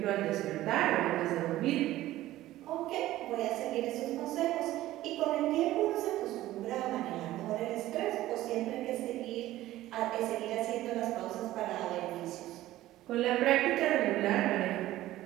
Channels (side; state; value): left; quieter; 15.3 dB